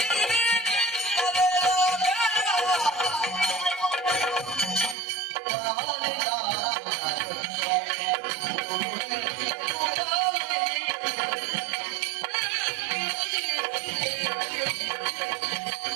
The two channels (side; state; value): left; drops out; at 5.0 s